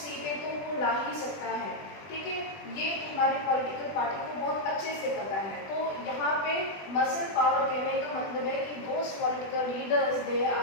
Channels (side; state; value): right; late; 20 ms